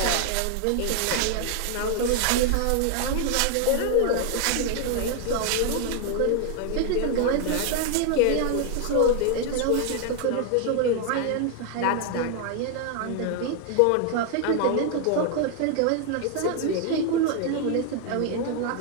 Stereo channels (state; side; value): different; both; correlation 0.00